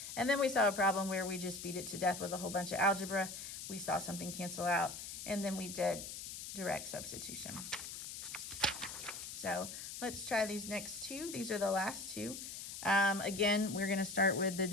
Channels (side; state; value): left; noise; hiss, 8 dB below the sound